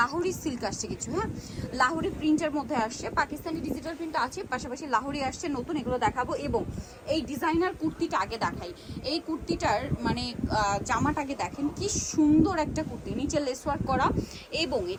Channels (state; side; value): identical; both; correlation 1.00